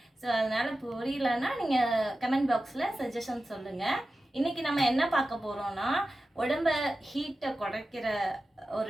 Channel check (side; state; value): both; normal; correlation 0.94